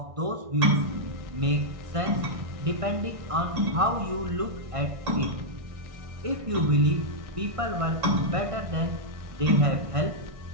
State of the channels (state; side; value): late; left; 1.6 ms